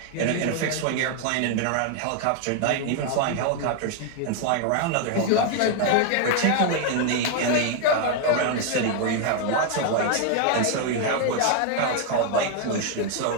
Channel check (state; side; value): different; both; correlation 0.00